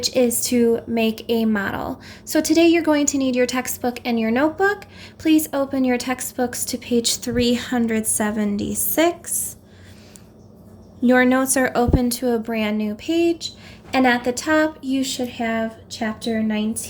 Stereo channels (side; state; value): both; identical; correlation 1.00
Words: is to make a model. So today you're going to need your textbook and your notebook. Please open your textbooks to page 376. Your notes are open to a brand new page, and at the top you should have Chapter